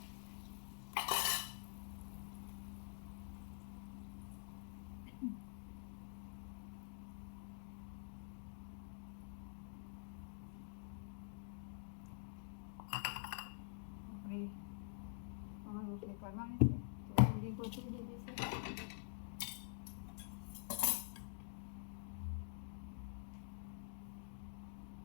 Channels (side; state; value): right; silent; digital silence